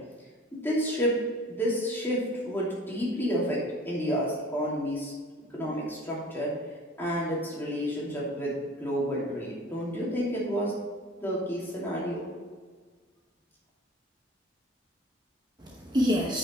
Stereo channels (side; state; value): both; normal; correlation 0.45